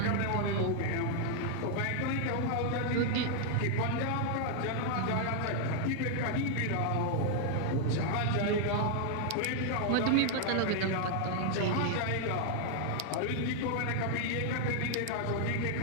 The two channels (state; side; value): different; both; correlation 0.00